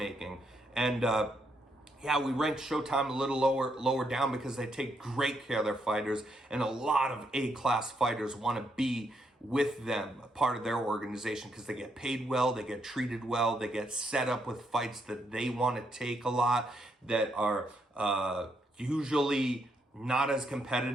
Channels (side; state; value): both; normal; correlation 0.77